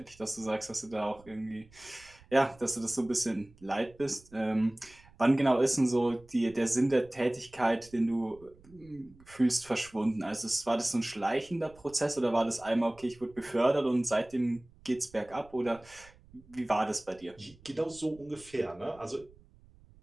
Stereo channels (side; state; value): right; noise; rumble, 25 dB below the sound